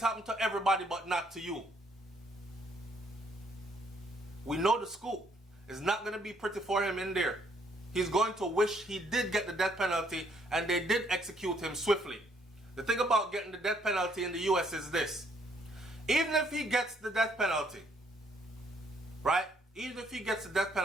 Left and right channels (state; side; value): normal; both; correlation 0.68